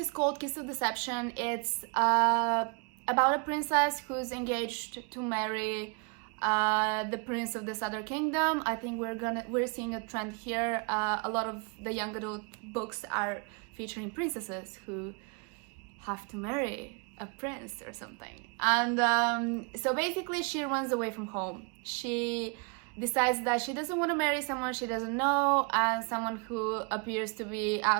called Kiss of Deception. It's about a princess who's engaged to marry The Prince of the Southern Kingdom. I think we're seeing a trend here. A lot of the young adult books are featuring princesses who have to marry a prince or something. And so basically she runs away from home. She decides that she doesn't want to marry someone she doesn't know, and someone who appears to be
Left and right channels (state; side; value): quieter; left; 35.0 dB